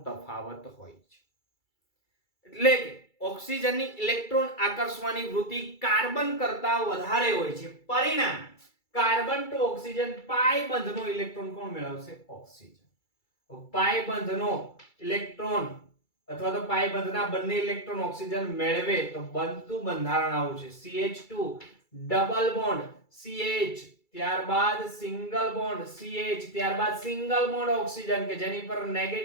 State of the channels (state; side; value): late; right; 2.3 ms